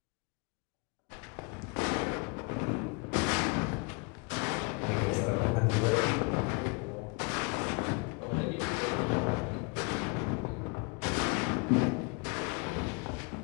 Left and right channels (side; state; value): right; quieter; 32.7 dB